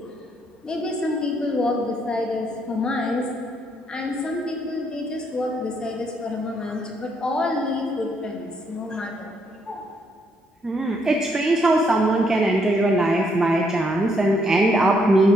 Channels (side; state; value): both; normal; correlation 0.73